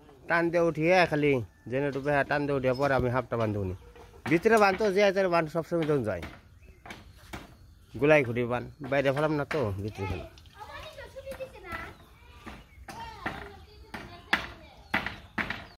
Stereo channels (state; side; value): identical; both; correlation 1.00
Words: টান দিয়ে উঠিয়ে খালি জেনে টুপে টান দিয়ে উঠিয়ে পরে আমি হাফটা বান্ধব নি ভিতরে বানতো যে বান সবসময় তখন যায় গোলাই খুঁটি বান বাইরে ফেলাম না তো ভিতরে ফেলাম